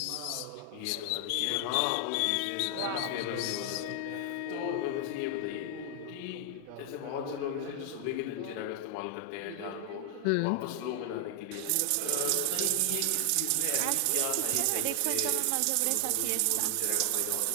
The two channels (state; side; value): different; both; correlation 0.00